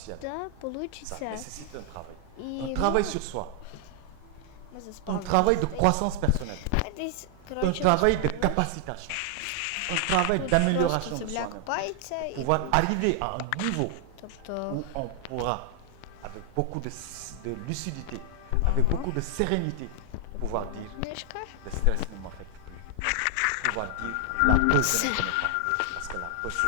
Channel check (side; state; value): both; different; correlation 0.00